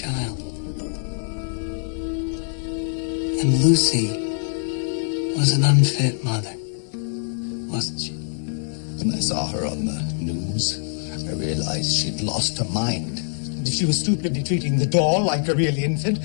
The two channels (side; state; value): right; silent; 60 dB below the other